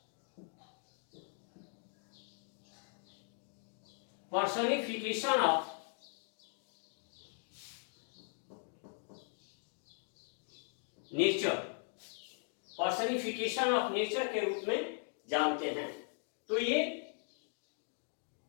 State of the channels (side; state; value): right; silent; 52 dB below the other